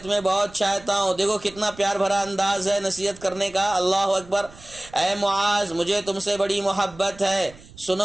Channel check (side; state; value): right; noise; rumble, 21 dB below the sound